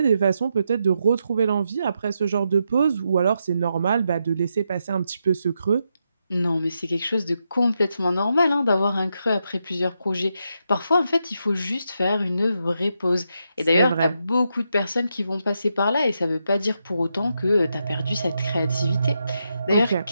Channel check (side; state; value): both; inverted; correlation -0.83